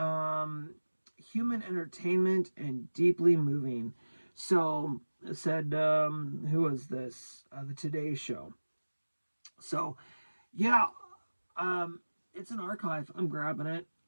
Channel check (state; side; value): inverted; both; correlation -1.00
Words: human entertainment, and deeply moving. So it said, who was this? The Today Show. So yeah, it's an archive. I'm grabbing it.